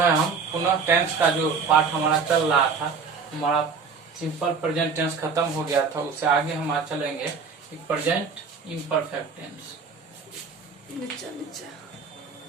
हम पुनः टेंस का जो पाठ हमारा चल रहा था, हमारा सिंपल प्रेजेंट टेंस खत्म हो गया था, उससे आगे हम आज चलेंगे present imperfect tense.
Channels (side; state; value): left; quieter; 5.3 dB